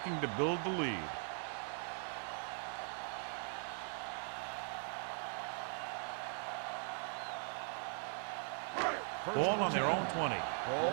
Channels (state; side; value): silent; left; 51 dB below the other